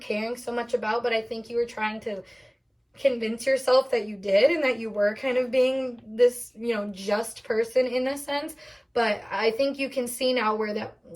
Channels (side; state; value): both; identical; correlation 1.00